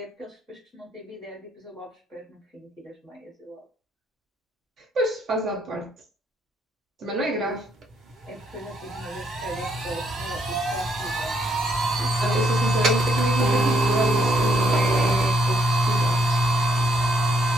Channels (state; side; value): normal; both; correlation 0.72